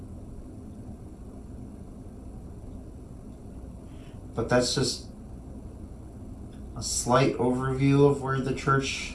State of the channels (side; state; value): both; identical; correlation 1.00